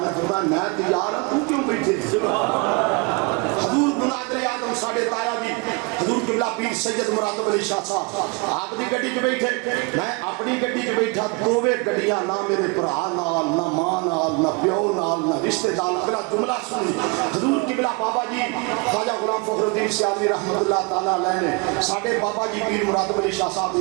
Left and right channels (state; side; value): quieter; left; 29.5 dB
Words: نے فرمایا میں تیار ہوں تو کیوں بیٹھے حضور مناظر آدم ساڑھے تایا جی حضور قبلہ پیر سید مراتب علی شاہ صاحب آپ دی گڈی کے بیٹھے میں اپنی گڈی کے بیٹھا دوویں گڈیاں نہ میرے بھرا نال نہ ماں نال نہ پیو نال نہ رشتہ دار اگلا جملہ سنی حضور قبلہ بابا جی خواجہ غلام فخر الدین سیالی رحمت اللہ تعالیٰ علیہ نے ساڑھے بابا جی پیر مراتب علی شاہ صاحب